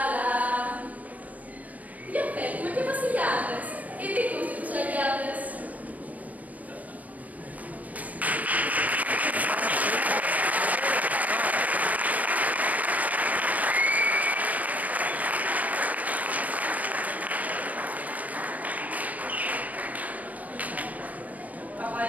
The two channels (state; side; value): late; left; 0.074 ms